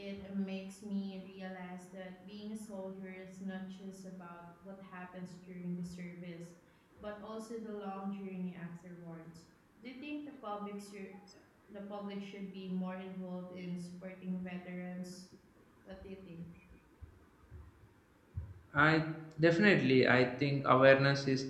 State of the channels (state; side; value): identical; both; correlation 1.00